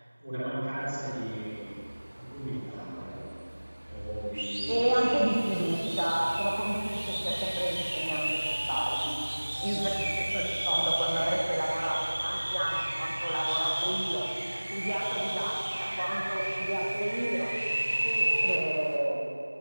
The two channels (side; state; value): both; inverted; correlation -1.00